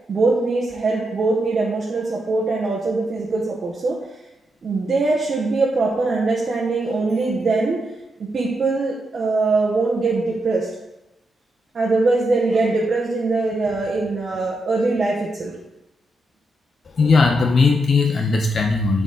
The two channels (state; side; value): normal; both; correlation 0.82